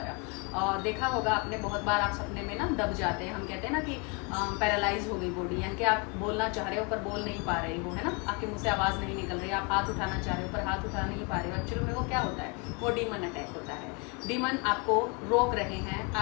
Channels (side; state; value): right; quieter; 32.1 dB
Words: और देखा होगा आपने, बहुत बार आप सपने में ना दब जाते हैं। हम कहते हैं ना कि पैरालाइज हो गई बॉडी, यानी कि आप बोलना चाह रहे हो पर बोल नहीं पा रहे हो, है ना, आपके मुँह से आवाज़ नहीं निकल रही, आप हाथ उठाना चाह रहे हो पर हाथ उठा नहीं पा रहे हो। एक्चुअली में वो क्या होता है, वो डीमन अटैक होता है। डीमन आपको रोक रहे हैं,